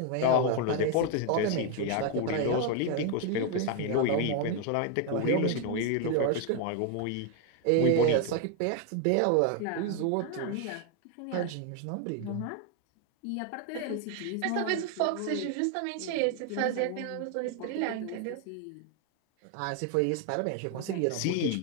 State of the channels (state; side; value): different; both; correlation 0.01